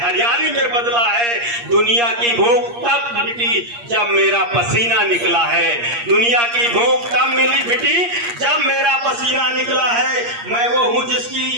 हरियाली में बदला है। दुनिया की भूख तब मिटी जब मेरा पसीना निकला है। दुनिया की भूख तब मिली मिटी जब मेरा पसीना निकला है। मैं वो हूँ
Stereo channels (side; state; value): left; late; 8.5 ms